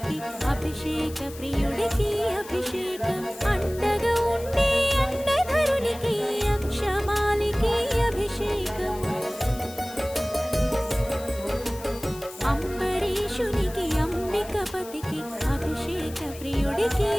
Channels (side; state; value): left; noise; hiss, 17 dB below the sound